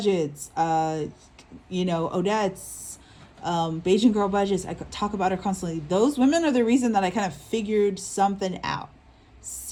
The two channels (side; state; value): both; identical; correlation 1.00